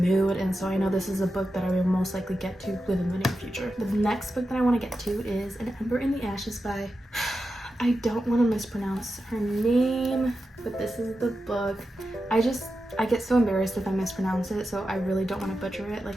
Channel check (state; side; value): normal; both; correlation 0.90